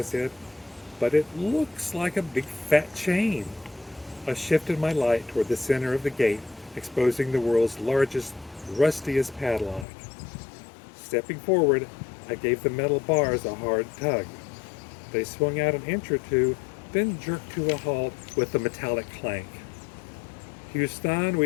said, but it looks like a big fat chain. I shifted my light toward the center of the gate, exposing the world's largest, rustiest padlock. Stepping forward, I gave the metal bars a hard tug. They swung out an inch or two, then jerked to a halt with a metallic clank. Houston,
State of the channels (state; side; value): drops out; right; at 9.9 s